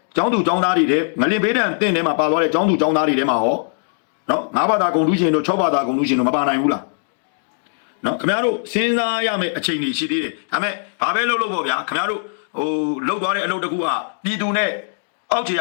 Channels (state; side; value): silent; right; digital silence